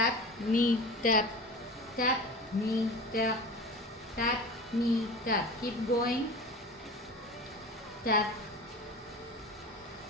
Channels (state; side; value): normal; both; correlation 0.34